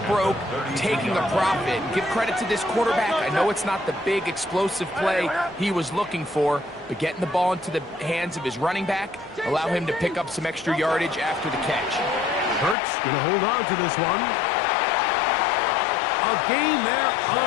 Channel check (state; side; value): drops out; right; at 12.8 s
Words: broke taking a profit. Give credit to this quarterback. I know it's not the big explosive play he was looking for, but getting the ball into the hands of his running back, allow him to pick up some extra yardage after the catch. Hurts going to hold on to this one. A gain there